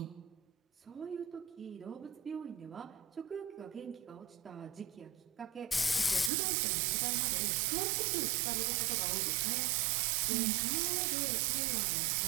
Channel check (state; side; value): drops out; left; at 6.3 s